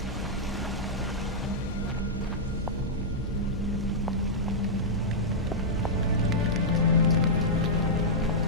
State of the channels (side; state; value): both; normal; correlation -0.10